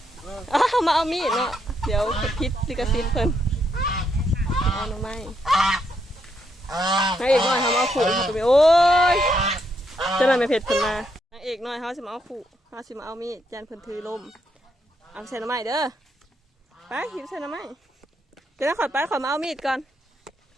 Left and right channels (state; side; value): normal; both; correlation 0.77